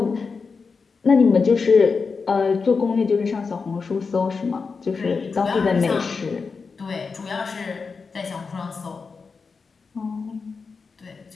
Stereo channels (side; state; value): right; quieter; 4.9 dB